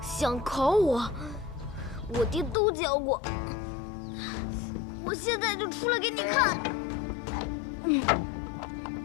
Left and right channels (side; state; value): right; drops out; at 2.6 s